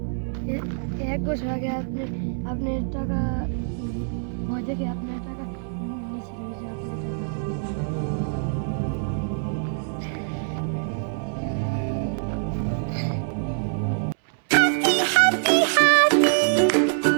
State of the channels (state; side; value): silent; left; 62 dB below the other